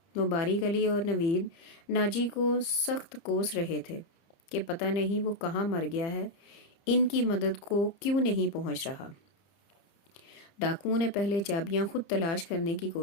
مبارک علی اور نوید ناجی کو سخت کوس رہے تھے کہ پتہ نہیں وہ کہاں مر گیا ہے، ان کی مدد کو کیوں نہیں پہنچ رہا۔ ڈاکوؤں نے پہلے چابیاں خود تلاش کرنے کی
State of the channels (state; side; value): late; right; 30 ms